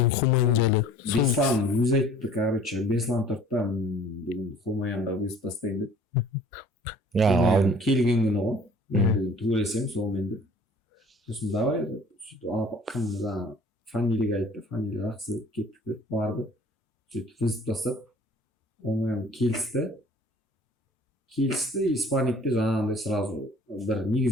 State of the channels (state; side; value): normal; both; correlation 0.50